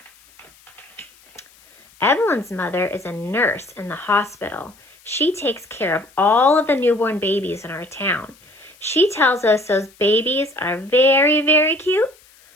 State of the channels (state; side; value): noise; left; hiss, 28 dB below the sound